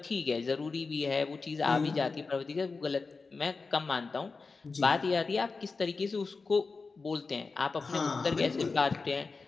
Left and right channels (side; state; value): right; quieter; 4.3 dB